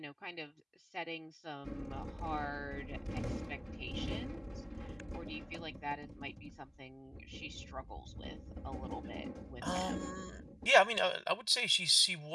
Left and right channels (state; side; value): identical; both; correlation 1.00